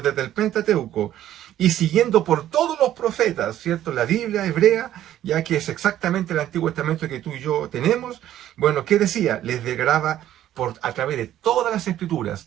el Pentateuco, y siguiendo por todos los profetas, ¿cierto? La Biblia hebrea, ya que es exactamente el Antiguo Testamento que tú y yo tenemos. Bueno, ¿qué decía? Les degraba a través de todas las Escrituras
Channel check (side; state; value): left; quieter; 12.3 dB